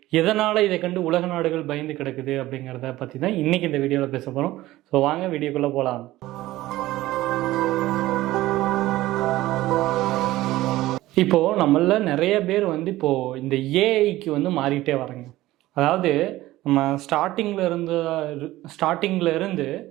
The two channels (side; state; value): left; quieter; 16.7 dB